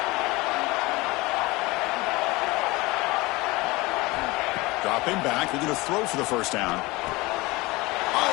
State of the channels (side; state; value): right; quieter; 22.3 dB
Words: Dropping back. They're going to throw for the first down.